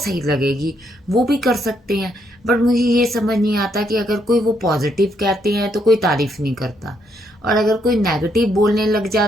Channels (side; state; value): both; normal; correlation 0.75